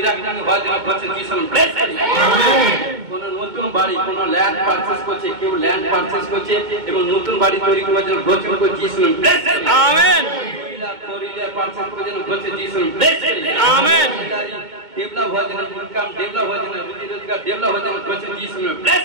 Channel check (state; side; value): late; left; 2.2 ms